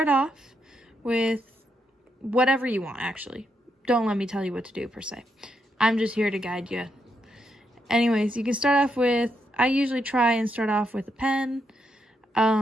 off with whatever you want, actually. Don't let me tell you what to do per se. I'm just here to guide you. Anyways, you can start off with, I usually try and start off with a pen,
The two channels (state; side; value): normal; both; correlation 0.80